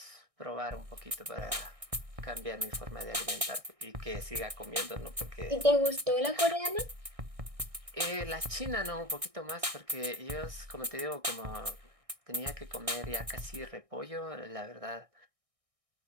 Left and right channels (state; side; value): late; left; 1.6 ms